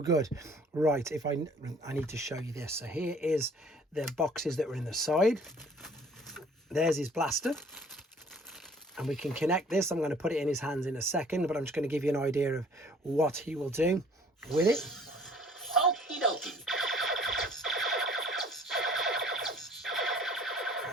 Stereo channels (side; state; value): both; normal; correlation 0.54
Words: good. Right, if I need to show you this. So here is the boxes that were in the side. There's his blaster. And we can connect this. I'm going to put it in his hands in a second, but I'm just going to give you an idea of what he will do with it. Okie dokie.